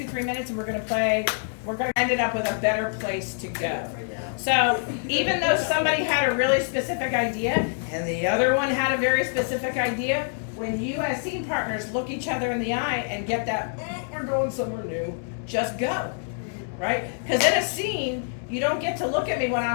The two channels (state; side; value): silent; right; digital silence